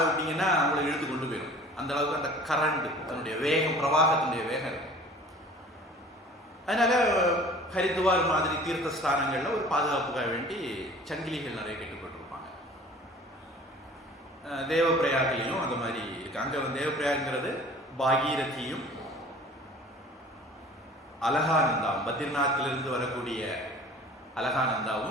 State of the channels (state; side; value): normal; both; correlation 0.46